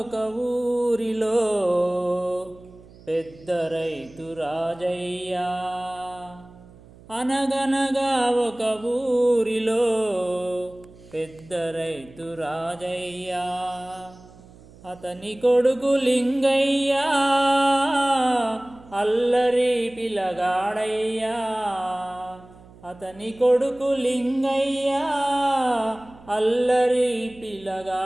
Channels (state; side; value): noise; right; hum, 23 dB below the sound